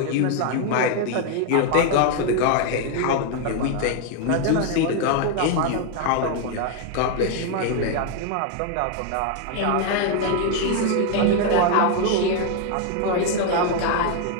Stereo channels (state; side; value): different; both; correlation 0.01